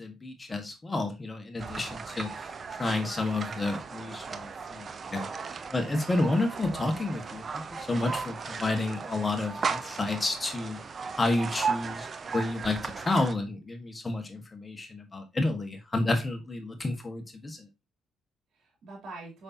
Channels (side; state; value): both; normal; correlation 0.87